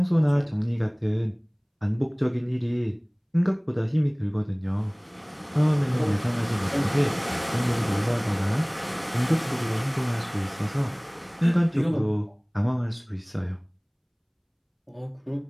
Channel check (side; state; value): both; identical; correlation 1.00